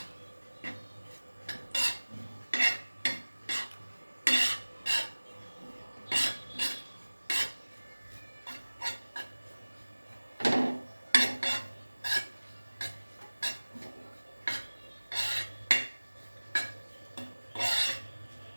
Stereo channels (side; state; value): both; inverted; correlation -1.00